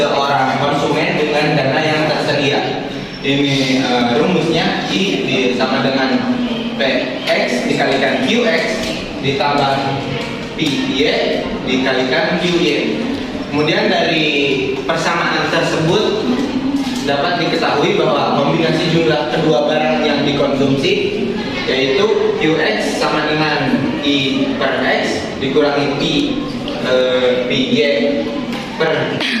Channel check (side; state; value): both; identical; correlation 1.00